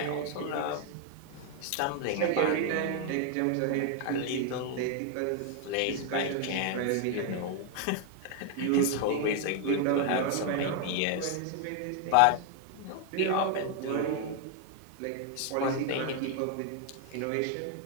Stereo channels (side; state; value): both; different; correlation 0.00